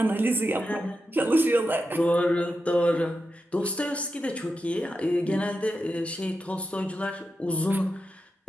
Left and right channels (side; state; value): both; normal; correlation 0.89